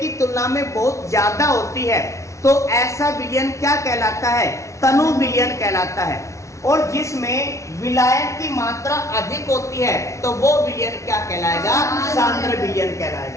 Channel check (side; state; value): right; late; 0.14 ms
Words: तुलना में बहुत ज्यादा होती है तो ऐसा विलयन क्या कहलाता है? तनु विलयन कहलाता है। और जिसमें विलायक की मात्रा अधिक होती है तो वो विलयन क्या कहलाएगा? सांद्र विलयन